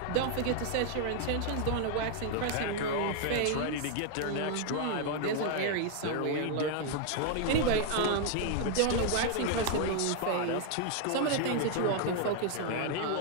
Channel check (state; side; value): different; both; correlation 0.00